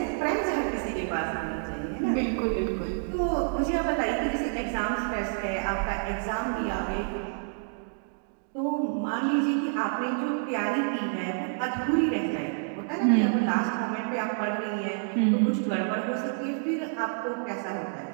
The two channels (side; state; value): left; silent; digital silence